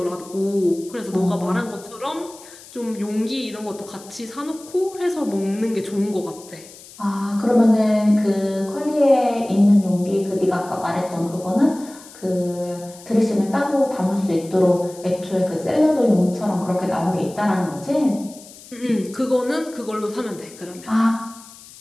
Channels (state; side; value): noise; left; hiss, 20 dB below the sound